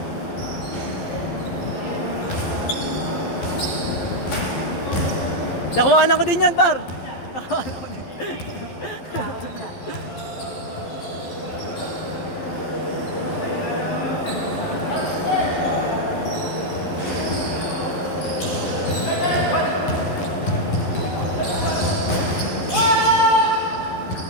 Nakuhanan ko din yan, par. Nakuhanan ko din.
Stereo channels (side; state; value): right; late; 11 ms